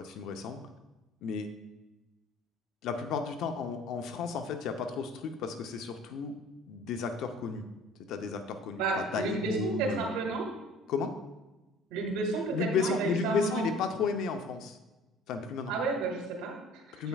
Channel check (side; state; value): both; normal; correlation 0.47